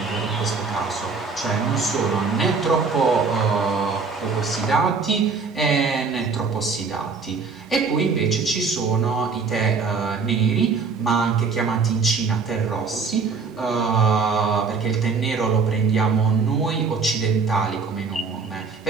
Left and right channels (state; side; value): quieter; left; 4.8 dB